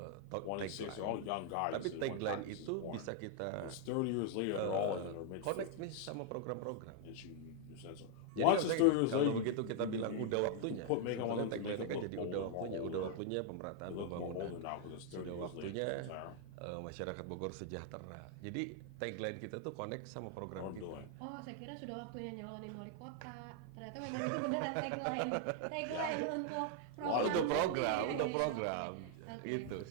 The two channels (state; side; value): different; both; correlation 0.00